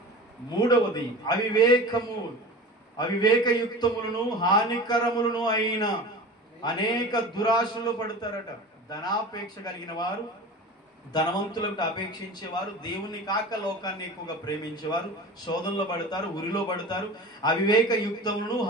మూడవది అవివేకయుక్తములను హానికరములను అయిన అనేక దురాశలు పడతారట. ధనాపేక్ష కలిగిన వారు, ధనవంతులకు అపేక్షించేవారు, దేవుని కాక లోకాన్ని ఎక్కువగా ప్రేమించేవారు శోధనలో పడతారు, ఉరిలో పడతారు. అవివేకయుక్తములను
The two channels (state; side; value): normal; both; correlation 0.35